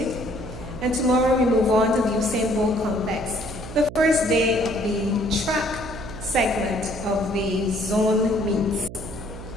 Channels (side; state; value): right; noise; hum, 12 dB below the sound